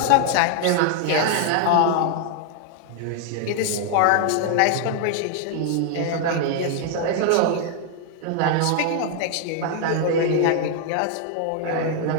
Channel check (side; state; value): both; different; correlation 0.00